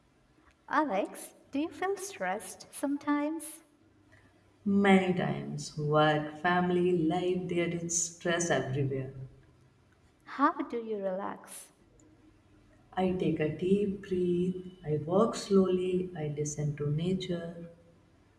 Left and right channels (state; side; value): identical; both; correlation 1.00